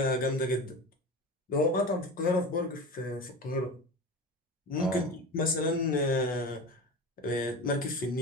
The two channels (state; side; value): normal; both; correlation 0.30